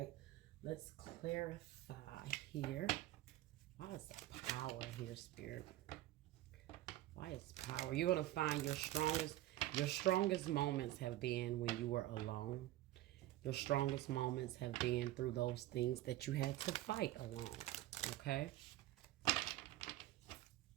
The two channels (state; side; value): quieter; left; 15.2 dB